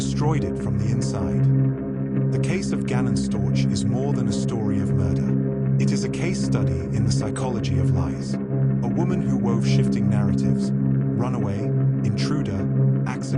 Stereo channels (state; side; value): identical; both; correlation 1.00